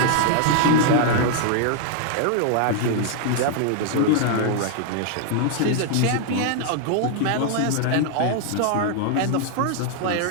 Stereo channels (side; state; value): both; different; correlation 0.00